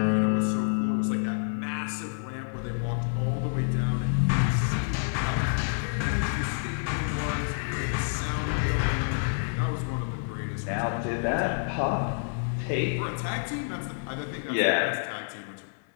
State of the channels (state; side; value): silent; right; digital silence